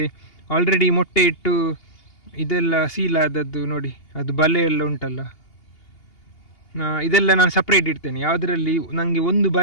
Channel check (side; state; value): right; late; 2.8 ms